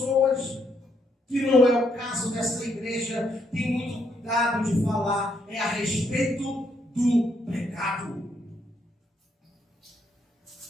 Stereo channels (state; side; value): normal; both; correlation 0.74